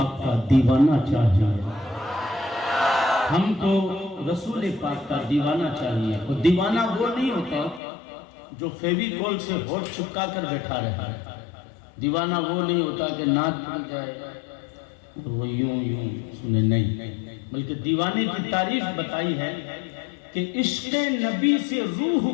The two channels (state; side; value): drops out; right; at 7.8 s